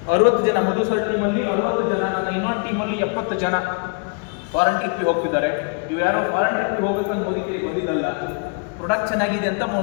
60 ಜನ ಮಧು ಸರ್ ಟೀಮಲ್ಲಿ 60 ಜನ, ನನ್ನ ಇನ್ನೊಂದು ಟೀಮಲ್ಲಿ 70 ಜನ ಫಾರಿನ್ ಟ್ರಿಪ್ಗೆ ಹೋಗ್ತಿದ್ದಾರೆ. ಇವು ಯಾರೋ ಫಾರಿನ್ ಟ್ರಿಪ್ಗೆ ಹೋಗ್ಬೇಕಂತ ಮೋದಿ ಕೇರಿಗೆ ಬಂದಿದ್ದಲ್ಲ, ಪ್ರೊಡಕ್ಟ್ ಚೆನ್ನಾಗಿದೆ ಅಂತ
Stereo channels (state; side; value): quieter; right; 37.6 dB